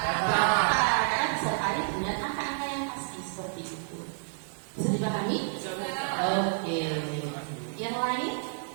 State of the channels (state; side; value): silent; left; 58 dB below the other